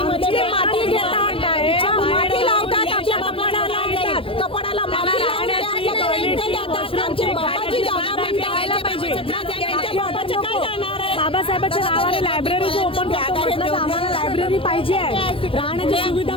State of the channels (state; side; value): late; right; 0.26 ms